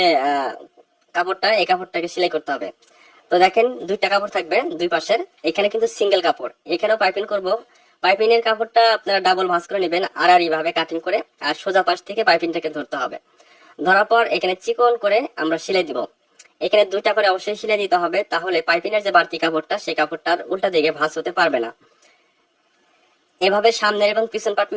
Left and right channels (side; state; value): both; identical; correlation 1.00